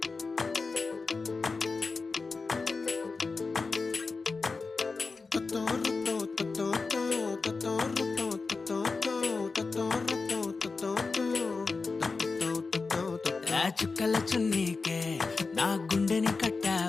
ఆ చుక్కల చున్నీకే నా గుండెని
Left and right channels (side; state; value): right; quieter; 4.2 dB